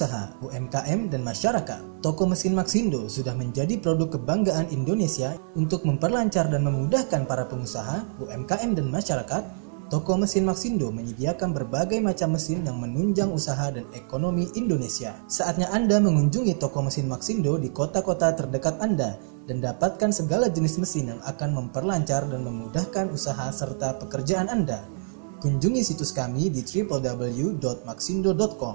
UMKM, dan masyarakat, toko mesin Maxindo sudah menjadi produk kebanggaan Indonesia. Untuk memperlancar dan memudahkan para pengusaha, UMKM, dan masyarakat, toko mesin Maxindo menyediakan berbagai macam mesin yang menunjang usaha dan ekonomi Indonesia. Saatnya Anda mengunjungi toko mesin Maxindo di kota-kota terdekat Anda dan dapatkan segala jenis mesin yang akan memperlancar dan memudahkan usaha serta pekerjaan Anda. Kunjungi situs kami di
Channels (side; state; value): left; silent; 61 dB below the other